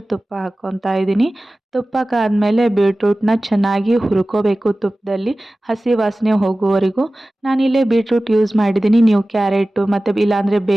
ತುಪ್ಪ ಹಾಕ್ಕೊತಾ ಇದ್ದೀನಿ. ತುಪ್ಪಕ್ಕಾದಮೇಲೆ ಬೀಟ್ರೂಟ್ನ ಚೆನ್ನಾಗಿ ಹುರ್ಕೋಬೇಕು ತುಪ್ಪದಲ್ಲಿ, ಹಸಿ ವಾಸನೆ ಹೋಗುವವರೆಗೂ. ನಾನಿಲ್ಲೇ ಬೀಟ್ರೂಟ್ ಯೂಸ್ ಮಾಡಿದ್ದೀನಿ, ನೀವು ಕ್ಯಾರೆಟು ಮತ್ತು ಇಲ್ಲಾಂದರೆ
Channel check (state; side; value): normal; both; correlation 0.97